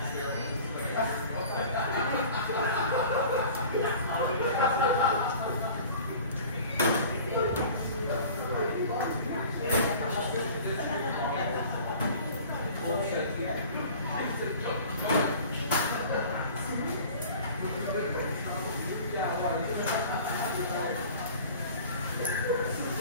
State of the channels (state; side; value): inverted; both; correlation -0.43